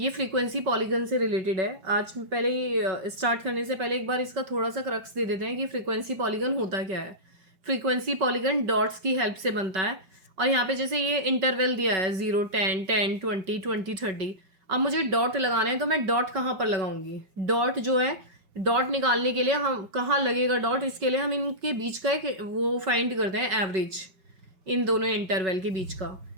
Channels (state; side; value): late; left; 5.3 ms